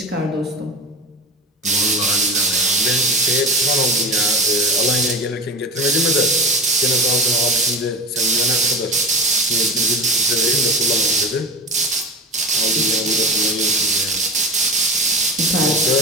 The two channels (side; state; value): both; normal; correlation 0.30